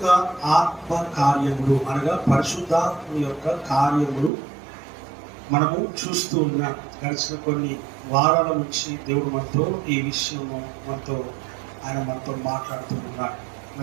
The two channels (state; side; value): drops out; left; at 4.3 s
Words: ఆత్మ కార్యములు అనగా పరిశుద్ధాత్మ యొక్క కార్యములు మనము చూస్తూ ఉన్నాం. గడిచిన కొన్ని వారాల నుంచి దేవుడు మనతో ఈ విషయము మనతో మాట్లాడుతూ ఉన్నాడు.